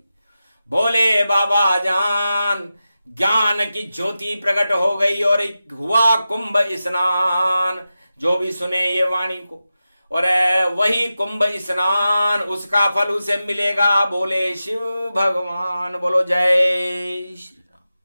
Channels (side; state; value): both; inverted; correlation -0.92